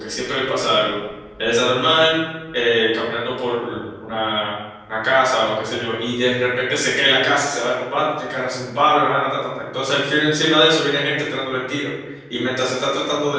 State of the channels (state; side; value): identical; both; correlation 1.00